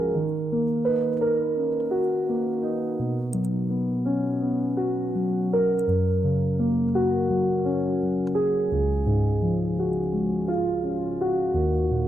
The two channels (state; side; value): normal; both; correlation 0.86